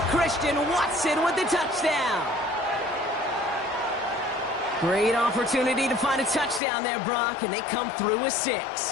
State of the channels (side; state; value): right; drops out; at 6.6 s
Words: Christian Watson with the touchdown. Great opportunity to find a touchdown there, Brock, and they come through with